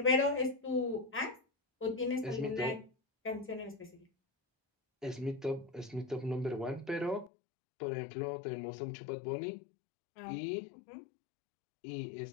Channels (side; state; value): right; drops out; at 7.3 s